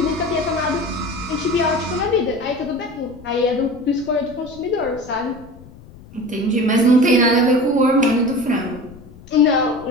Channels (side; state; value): left; noise; rumble, 20 dB below the sound